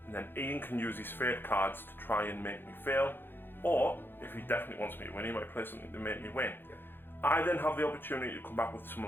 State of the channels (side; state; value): right; late; 0.10 ms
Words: and then Ian can use his fate cards to try and make me fail, or if he definitely wants me to win, he might play something to make me win. Yep. I then have the opportunity to come back with some of